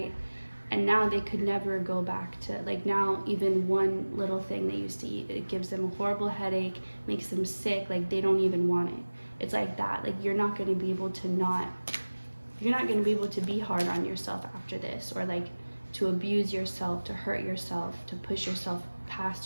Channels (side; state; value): both; inverted; correlation -1.00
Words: and now they could never go back to, like, now even one little thing they used to eat, it gives them a horrible headache, makes them sick, like they don't even want it. It's like that. Like you're not going to be able to be hard on yourself after this, or like to abuse yourself, to hurt yourself, to push yourself